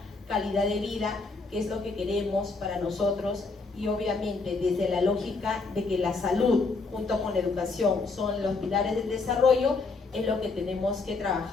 calidad de vida, que es lo que queremos para nosotros, y obviamente desde la lógica de que la salud junto con la educación son los pilares del desarrollo, es lo que tenemos que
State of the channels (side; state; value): right; quieter; 4.0 dB